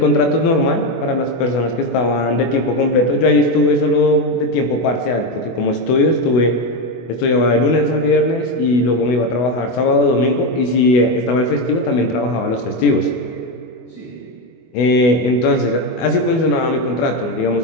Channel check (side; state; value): right; late; 24 ms